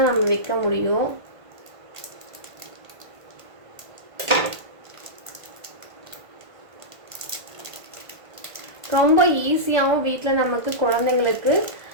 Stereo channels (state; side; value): late; left; 1.5 ms